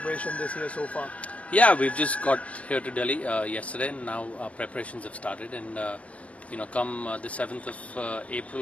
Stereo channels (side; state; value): right; late; 0.065 ms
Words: this year so far? Yeah, we've just got here to Delhi yesterday, and now our preparations have started. And come the 7th of